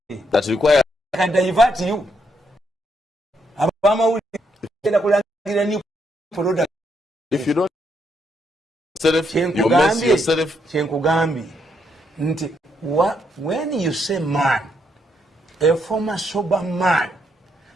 that requires I can divert you. If you don't self, you mess yourself. When you say man, a former sober man,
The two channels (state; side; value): normal; both; correlation 0.76